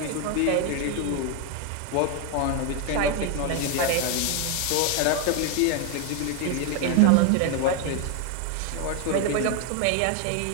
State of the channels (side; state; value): both; different; correlation 0.01